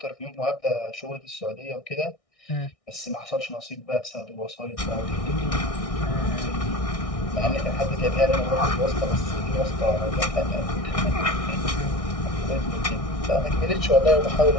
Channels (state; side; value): late; right; 1.6 ms